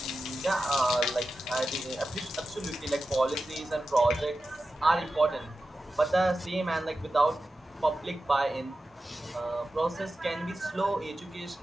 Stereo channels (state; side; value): normal; both; correlation 0.93